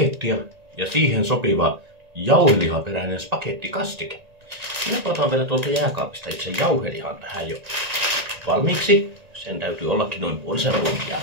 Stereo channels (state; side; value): late; left; 1.9 ms